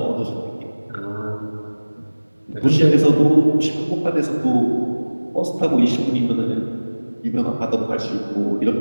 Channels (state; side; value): inverted; both; correlation -1.00